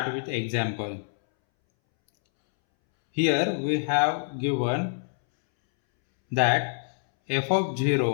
with example. Here we have given that f of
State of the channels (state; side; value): silent; right; 61 dB below the other